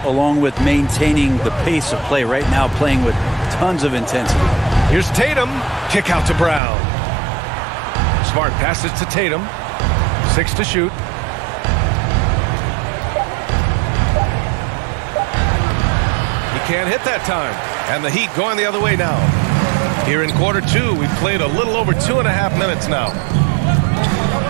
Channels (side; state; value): left; drops out; at 6.6 s